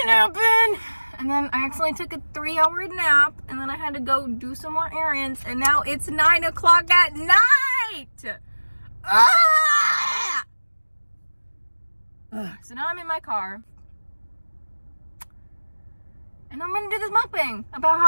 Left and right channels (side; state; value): both; inverted; correlation -1.00